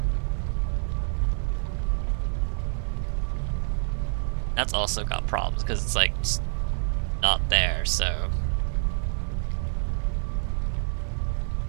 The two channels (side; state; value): left; silent; 60 dB below the other